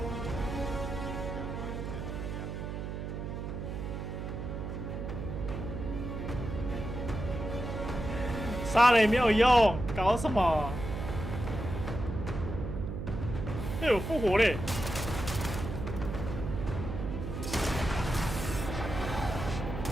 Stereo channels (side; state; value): right; noise; hum, 5 dB below the sound